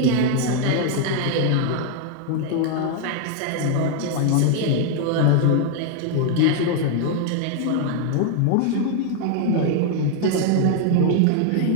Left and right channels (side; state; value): both; different; correlation 0.00